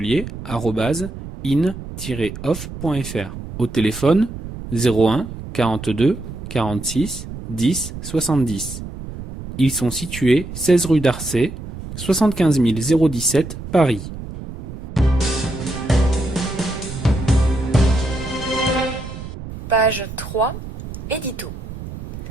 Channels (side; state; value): right; noise; rumble, 10 dB below the sound